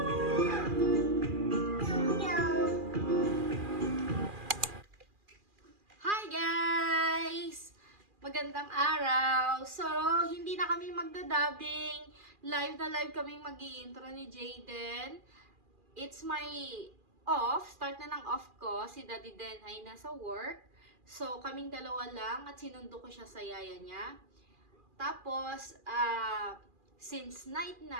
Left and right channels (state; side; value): late; left; 2.4 ms